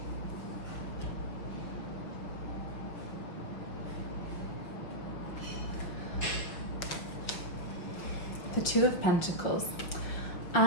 the Two of Pentacles,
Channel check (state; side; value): late; right; 5.9 ms